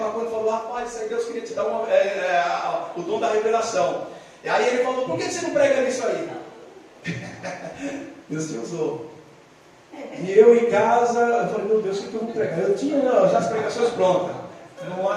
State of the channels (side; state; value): both; identical; correlation 1.00